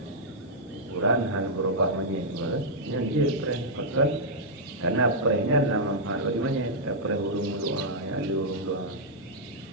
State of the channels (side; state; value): both; normal; correlation -0.07